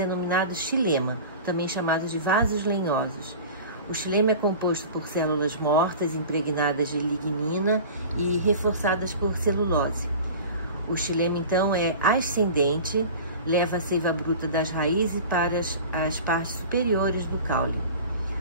xilema, também chamados de vasos lenhosos. O xilema é composto por células mortas impregnadas de lignina e reforçadas por celulose. O xilema, então, é ascendente, leva a seiva bruta das raízes para as partes superiores do caule.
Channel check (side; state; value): both; inverted; correlation -0.37